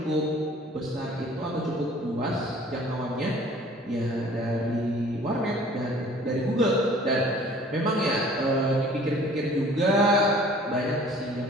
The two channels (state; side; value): normal; both; correlation 0.51